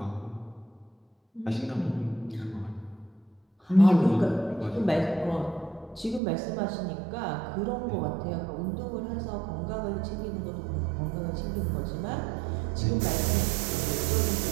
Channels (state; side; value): drops out; left; at 6.2 s